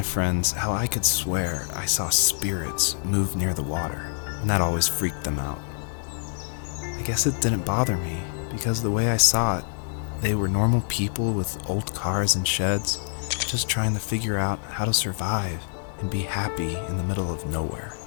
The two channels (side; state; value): right; silent; digital silence